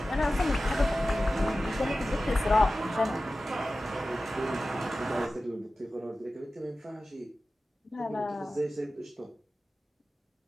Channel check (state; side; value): normal; both; correlation 0.95